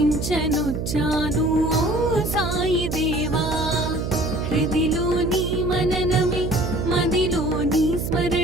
ఓ సాయి దేవా. హృదిలోని మననమే మదిలోని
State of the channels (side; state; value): right; noise; hum, 4 dB below the sound